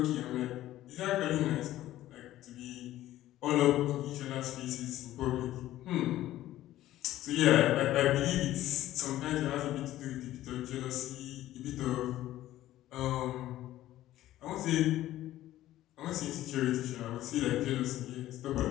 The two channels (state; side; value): quieter; right; 14.3 dB